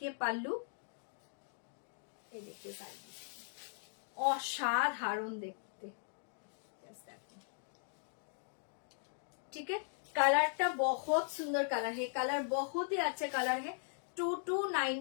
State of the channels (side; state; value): right; silent; digital silence